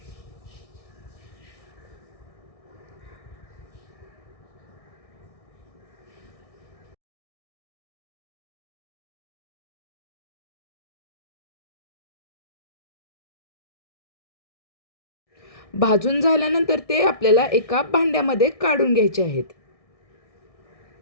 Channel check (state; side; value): late; right; 1.6 ms